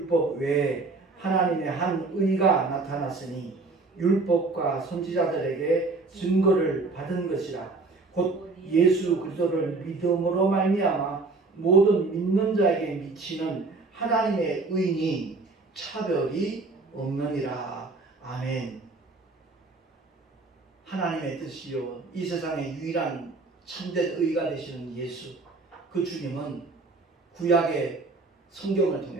외에 하나님의 한 의가 나타났으니 율법과 선지자들에게 증거를 받은 것이라. 곧 예수 그리스도를 믿음으로 말미암아 모든 믿는 자에게 미치는 하나님의 의니 차별이 없느니라. 아멘. 하나님의 뜻이요 이 세상의 유일한 참된 의가 되시는 예수, 그 주님은 구약의 성경을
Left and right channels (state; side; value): quieter; left; 3.7 dB